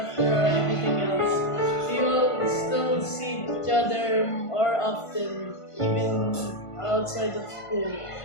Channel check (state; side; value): late; right; 1.5 ms